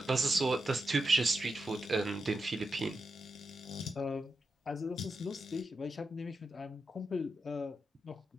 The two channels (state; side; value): normal; both; correlation 0.88